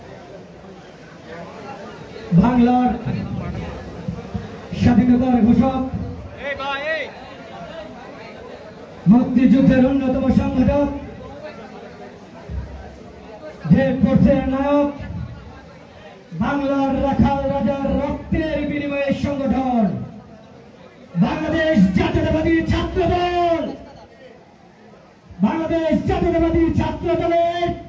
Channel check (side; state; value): both; identical; correlation 1.00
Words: বাংলার স্বাধীনতার ঘোষক, মুক্তিযুদ্ধের অন্যতম সংগঠক, যে কোর্সের নায়ক, বাংলার রাখাল রাজার রক্তের বিনিময়ে সংগঠন বাংলাদেশ জাতীয়তাবাদী ছাত্র দল, বাংলাদেশ জাতীয়তাবাদী ছাত্র দলের